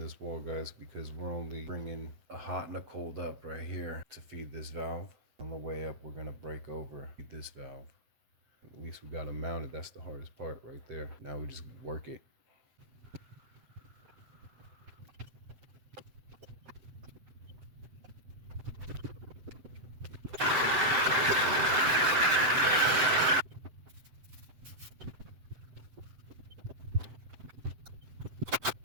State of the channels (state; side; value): late; left; 7.8 ms